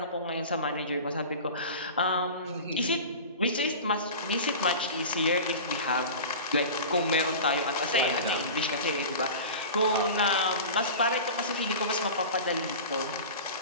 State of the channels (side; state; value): both; inverted; correlation -0.33